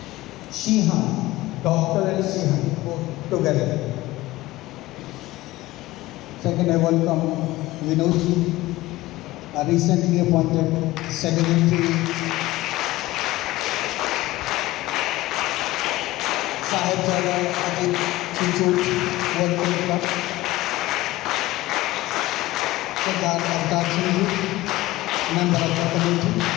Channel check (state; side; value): quieter; right; 18.0 dB